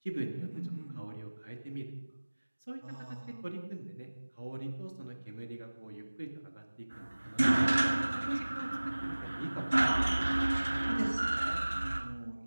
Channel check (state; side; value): inverted; both; correlation -1.00